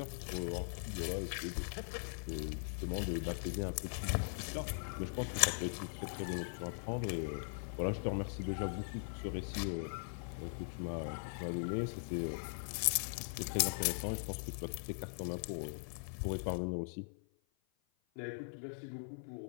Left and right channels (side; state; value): right; silent; 51 dB below the other